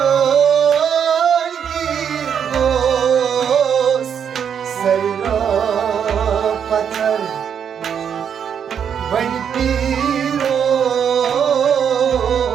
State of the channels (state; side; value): quieter; left; 7.9 dB